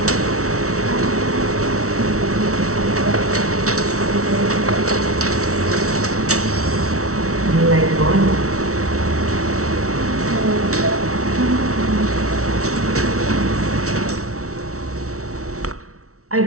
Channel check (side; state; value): left; late; 0.64 ms